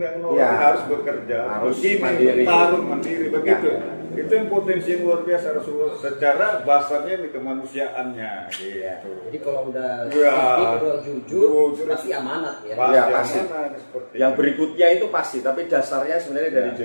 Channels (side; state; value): both; inverted; correlation -1.00